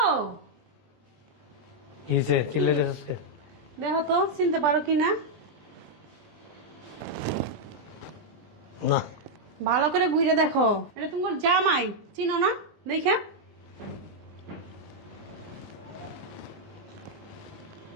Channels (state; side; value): late; left; 20 ms